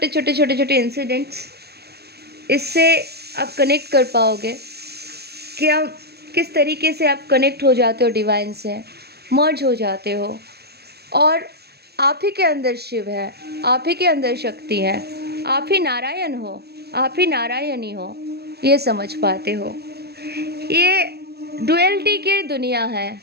छोटे इंसिडेंट्स। इससे आप कनेक्ट कर पाओगे कि आप किस तरीके से आप कनेक्ट हो जाते हो डिवाइन से, मर्ज हो जाते हो, और आप ही के अंदर शिव है, आप ही के अंदर शक्ति है, आप ही नारायण हो, आप ही नारायणी हो, ये समझ पाते हो। ये डुअलिटी की दुनिया है,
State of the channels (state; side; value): late; left; 0.47 ms